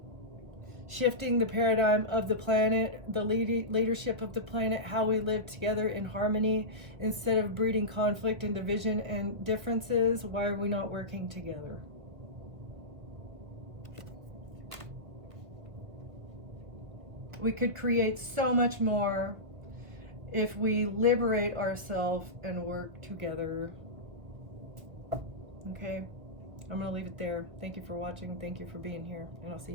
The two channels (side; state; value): left; late; 1.7 ms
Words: Shifting the paradigm of the planet, the leadership of the planet, how we live together in harmony instead of breeding conflict and division and differences. Why are we not working together? We could create so much more if we liberate ourselves and work together. Okay, I'm going to leave it there. Thank you for watching. Thank you for being here, and I'll see